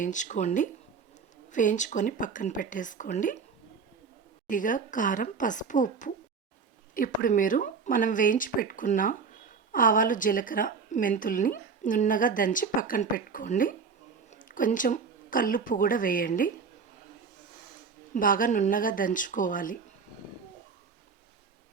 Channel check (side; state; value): left; quieter; 5.5 dB